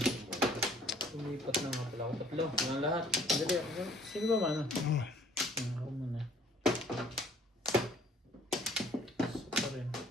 Lumipat na nga pala ako. Tatlo. Mga lahat. Dali ako. Sino ba mano? Oh. Ako muna. So pa rin.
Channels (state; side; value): normal; both; correlation 0.57